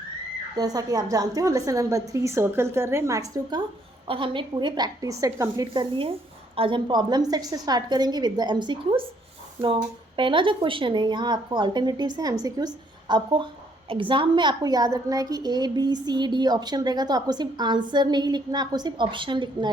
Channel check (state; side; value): normal; both; correlation 0.68